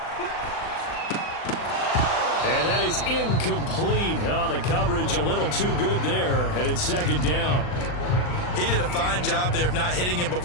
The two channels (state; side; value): late; right; 39 ms